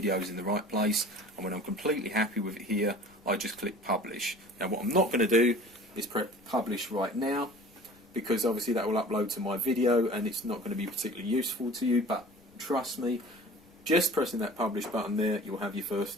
in the right place. And when I'm completely happy with it here, I just click publish. Now what I'm not going to do is press publish right now, because obviously that will upload to my video and it's not going to be particularly useful to you, but trust me, just pressing that publish button there, you'll have your first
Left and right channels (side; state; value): left; noise; rumble, 30 dB below the sound